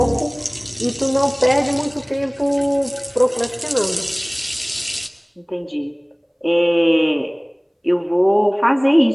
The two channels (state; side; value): identical; both; correlation 1.00